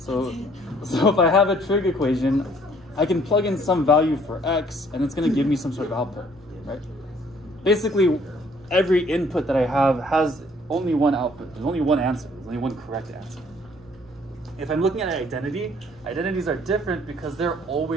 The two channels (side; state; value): both; normal; correlation 0.61